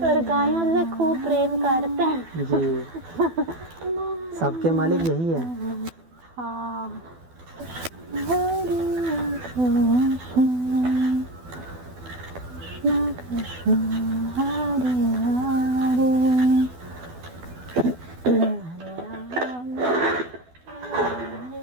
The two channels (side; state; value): left; late; 12 ms